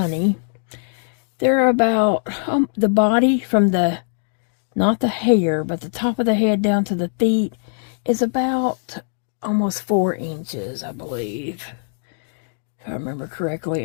They're about the body from not the hair, but the top of the head down to the feet is about almost 4 inches, I believe, if I remember correctly.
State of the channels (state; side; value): silent; right; digital silence